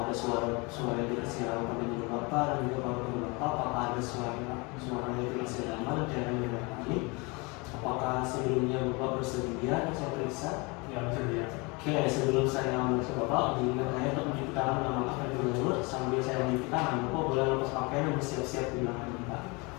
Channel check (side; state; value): right; quieter; 27.9 dB